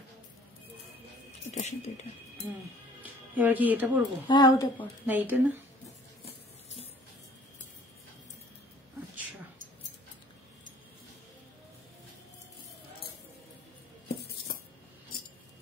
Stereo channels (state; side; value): normal; both; correlation 0.54